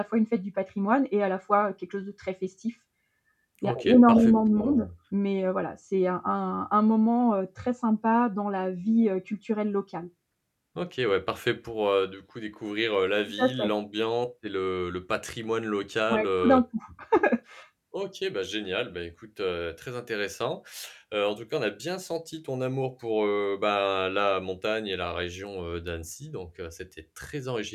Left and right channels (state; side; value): identical; both; correlation 1.00